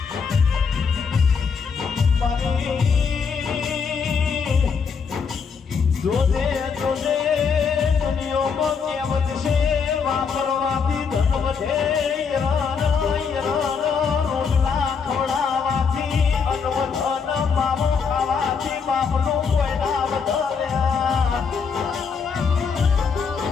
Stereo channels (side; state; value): right; quieter; 5.8 dB